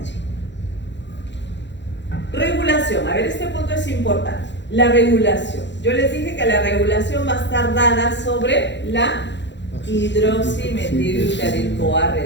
Regulación, a ver, este punto es importante. La regulación. Yo les dije que la regulación va a estar dada sobre la hidroximetilglutatil-CoA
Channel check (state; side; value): late; right; 0.52 ms